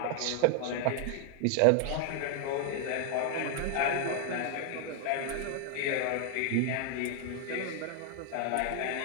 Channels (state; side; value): different; both; correlation 0.00